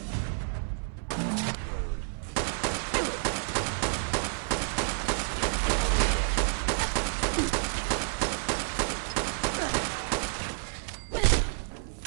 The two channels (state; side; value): silent; left; 58 dB below the other